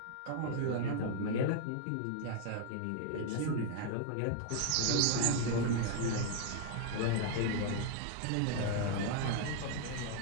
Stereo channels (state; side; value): different; both; correlation 0.00